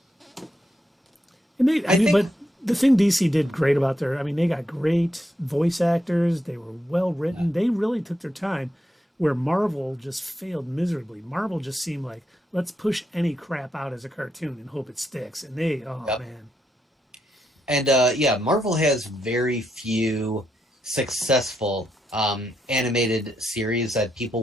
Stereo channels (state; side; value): normal; both; correlation 0.81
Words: and they, I think- but the thing DC did great about they got great voice actors. They were well written. They really took their time, where Marvel just failed miserably. Marvel just seemed like, let's push any crap out as a cartoon and hope it sticks. And they, Yep. man. And Marvel has very few successful animated series that